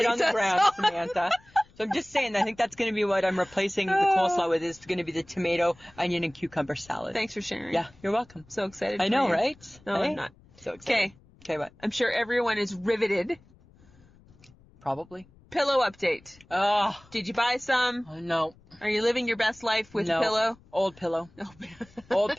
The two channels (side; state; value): left; noise; rumble, 27 dB below the sound